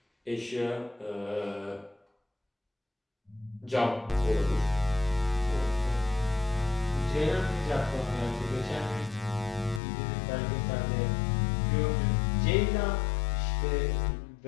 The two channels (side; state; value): right; drops out; at 9.8 s